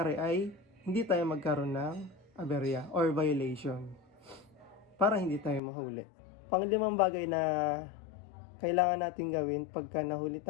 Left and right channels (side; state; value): right; drops out; at 5.6 s